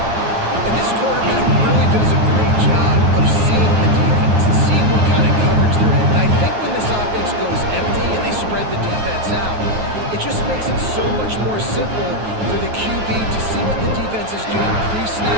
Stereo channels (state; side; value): late; left; 9.2 ms